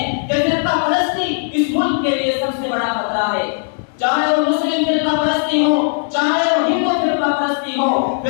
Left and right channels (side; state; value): right; silent; digital silence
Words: कि फिरका परस्ती इस मुल्क के लिए सबसे बड़ा खतरा है। चाहे वो मुस्लिम फिरका परस्ती हो, चाहे वो हिंदू फिरका परस्ती हो,